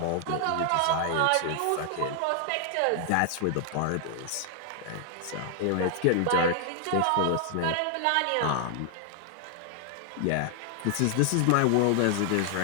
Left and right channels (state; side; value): different; both; correlation 0.00